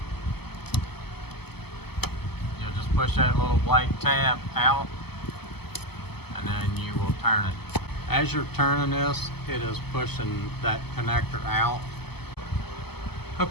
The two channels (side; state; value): right; late; 0.97 ms